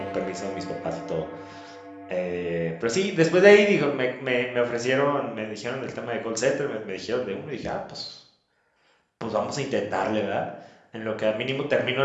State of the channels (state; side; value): identical; both; correlation 1.00